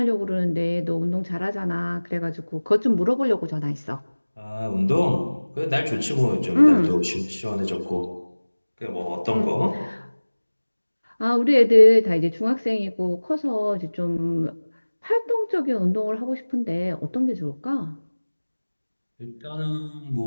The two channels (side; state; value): both; inverted; correlation -1.00